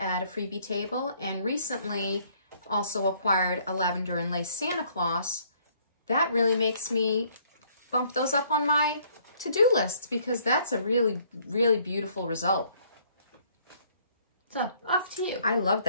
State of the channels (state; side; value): inverted; both; correlation -0.64